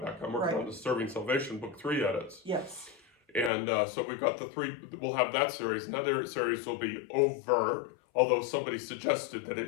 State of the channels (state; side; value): drops out; right; at 3.5 s